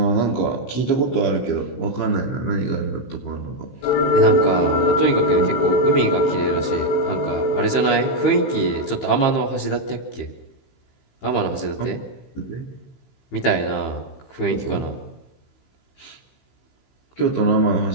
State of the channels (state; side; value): late; right; 15 ms